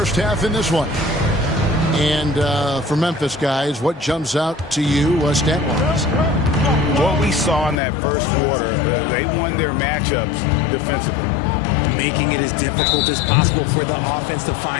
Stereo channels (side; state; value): right; drops out; at 7.8 s